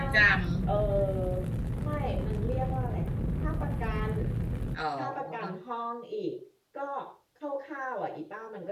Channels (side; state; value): both; identical; correlation 1.00